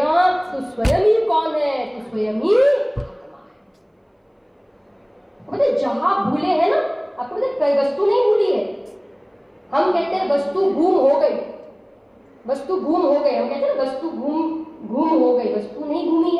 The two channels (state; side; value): identical; both; correlation 1.00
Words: तू स्वयं ही कौन है, तू स्वयं ही मतलब जहां भूले हैं ना, आपको मतलब कोई वस्तु नहीं भूली है। हम कहते हैं वस्तु गुम हो गई, वस्तु गुम हो गई, हम कहते हैं वस्तु गुम हो गई, वस्तु नहीं घूमी